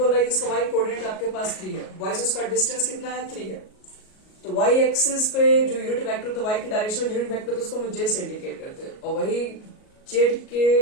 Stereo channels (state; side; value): late; right; 38 ms